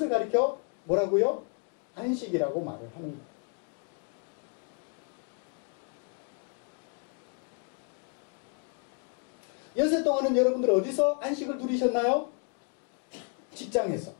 가리켜 뭐라고요? 안식이라고 말을 하는 거예요. 연세 동안은 여러분들 어디서 안식을 누리셨나요? 직장에서.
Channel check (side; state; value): right; quieter; 37.2 dB